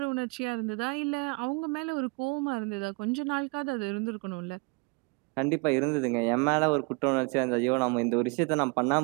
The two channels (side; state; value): left; quieter; 30.7 dB